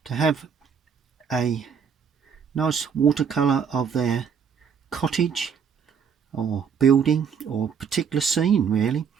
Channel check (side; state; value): left; quieter; 6.9 dB